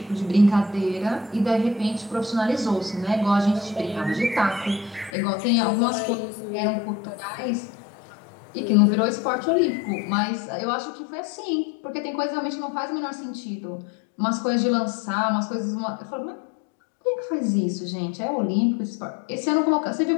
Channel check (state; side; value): drops out; right; at 5.2 s